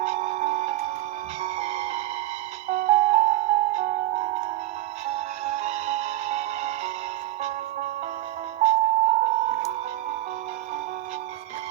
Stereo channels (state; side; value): quieter; left; 15.4 dB